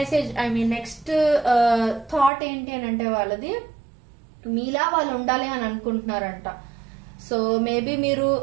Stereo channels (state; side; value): drops out; left; at 2.3 s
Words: నెక్స్ట్ థాట్ ఏంటి అని అంటే వాళ్ళది మీలా వాళ్ళు ఉండాలి అని అనుకుంటున్నారంట. సో మేబీ మీరు